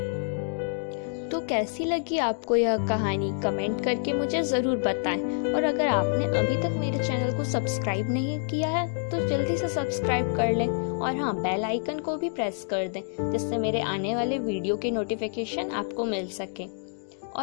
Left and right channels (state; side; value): silent; right; digital silence